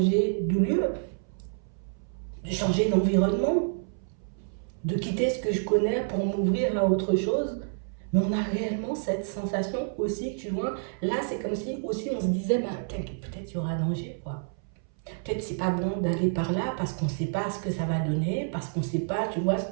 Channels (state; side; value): silent; left; 59 dB below the other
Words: de lieu, de changer d'environnement, de quitter ce que je connais pour m'ouvrir à autre chose. Mais on a réellement cette sensation aussi, tu vois. Là, c'est comme si aussi on se disait, bah, peut-être il y aura danger, quoi. Peut-être c'est pas bon d'aller par là parce qu'on ne sait pas ce que ça va donner, parce qu'on ne sait pas, tu vois, ce